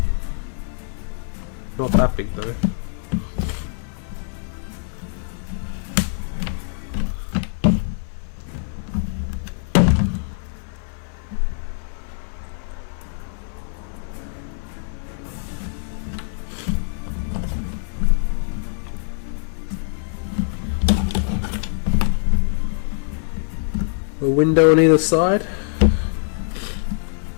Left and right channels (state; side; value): silent; right; 62 dB below the other